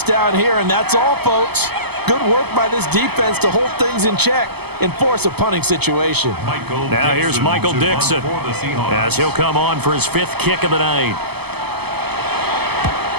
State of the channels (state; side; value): late; left; 0.97 ms